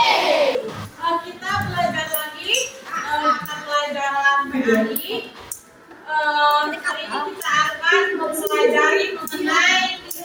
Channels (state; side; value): identical; both; correlation 1.00